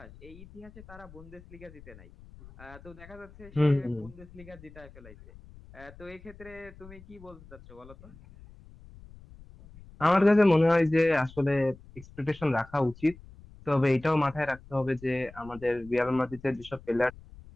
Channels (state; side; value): noise; left; rumble, 20 dB below the sound